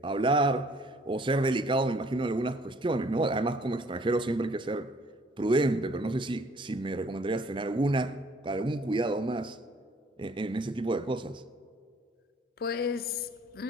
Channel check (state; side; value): normal; both; correlation 0.59